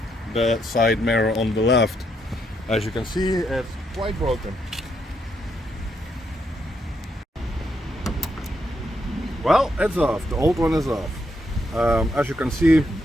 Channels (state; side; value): normal; both; correlation 0.77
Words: the side mirror on the left. As you can see, it's quite broken. Well, it's off. The old one is off. As you can see,